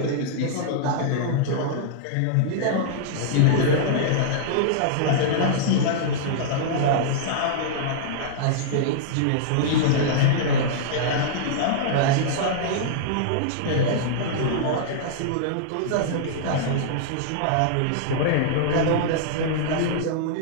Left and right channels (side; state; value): both; different; correlation -0.02